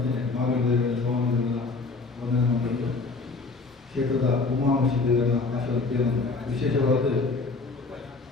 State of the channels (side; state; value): right; quieter; 3.9 dB